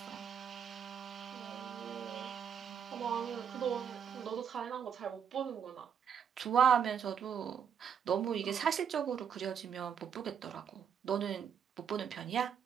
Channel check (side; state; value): left; quieter; 7.8 dB